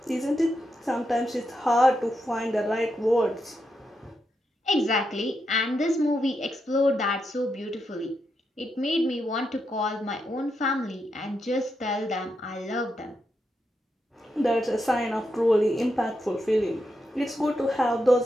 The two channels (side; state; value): both; normal; correlation 0.84